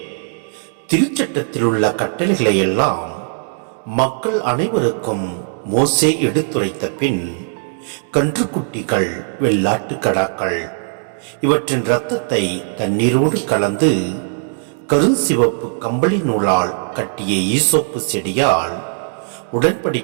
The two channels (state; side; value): silent; left; digital silence